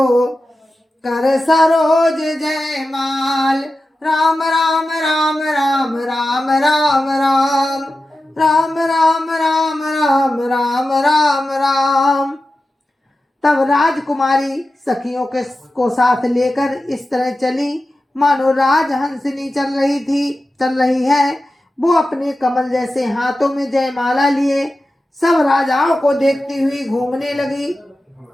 कर सरोज जयमाल राम राम राम राम राम राम राम राम राम राम राम राम राम राम। तब राजकुमारी सखियों के को साथ लेकर इस तरह चली मानो राजहंसिनी चल रही है। वो अपने कमल जैसे हाथों में जयमाला लिए सब राजाओं को देखती हुई घूमने लगी।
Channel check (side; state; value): both; normal; correlation 0.93